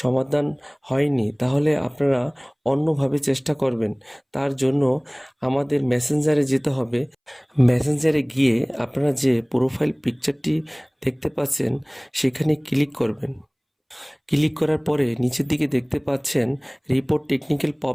হয়নি তাহলে আপনারা অন্যভাবে চেষ্টা করবেন। তার জন্য আমাদের মেসেঞ্জারে যেতে হবে। মেসেঞ্জারে গিয়ে আপনারা যে প্রোফাইল পিকচারটি দেখতে পাচ্ছেন সেখানে ক্লিক করবেন। ক্লিক করার পরে নিচের দিকে দেখতে পাচ্ছেন রিপোর্ট টেকনিক্যাল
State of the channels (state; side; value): identical; both; correlation 1.00